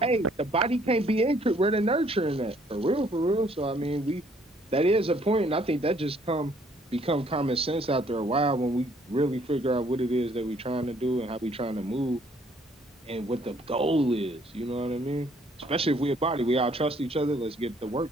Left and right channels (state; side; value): normal; both; correlation 0.63